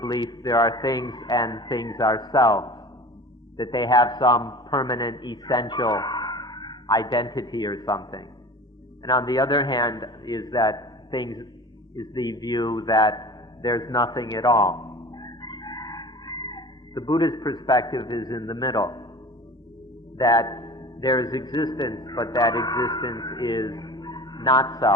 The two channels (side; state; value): both; normal; correlation 0.39